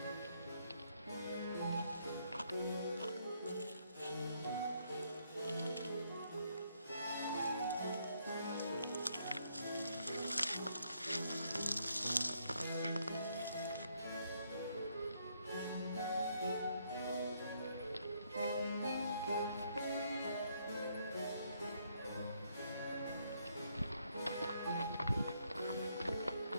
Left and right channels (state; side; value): inverted; both; correlation -0.72